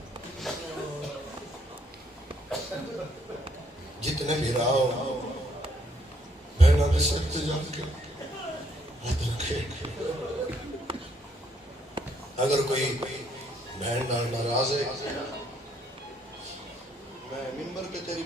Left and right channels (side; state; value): both; normal; correlation 0.70